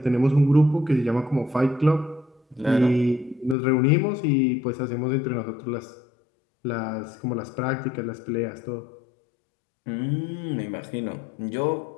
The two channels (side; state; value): right; drops out; at 3.6 s